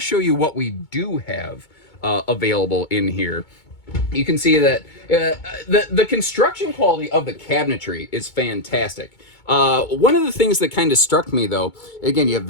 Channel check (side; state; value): right; late; 2.2 ms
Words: you what we do have available in here. You can see that the construction quality of the cabinetry is fantastic. One of the things that kind of struck me, though, again, you have